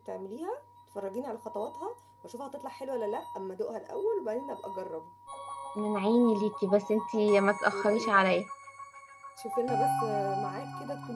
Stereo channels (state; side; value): identical; both; correlation 1.00